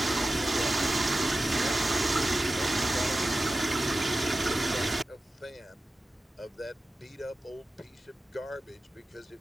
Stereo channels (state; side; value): normal; both; correlation 0.94